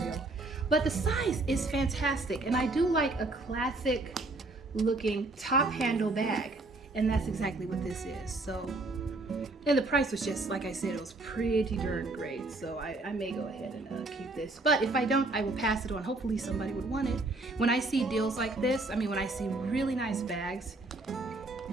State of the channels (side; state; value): left; quieter; 3.0 dB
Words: But the size is fantastic, and I do like a classic looking top handle bag. And that's exactly what this is. So, and the price was just, like I said, it was pretty darn great. So I may go ahead and keep this. But if I don't, I will pass it on. Hopefully somebody would want it. When I see deals like this, I mean, when I see really nice bags,